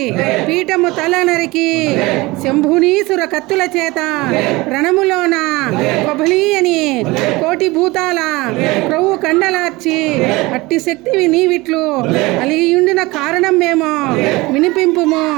పీఠము తల నరికి శంభునీసుర కత్తుల చేత రణములోన కొబలి అని కోటి భూతాల క్రొవ్వు కండలార్చి అట్టి శక్తివి నీవిట్లు అలిగియుండిన కారణం మేము వినిపింపుము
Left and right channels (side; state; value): left; quieter; 22.0 dB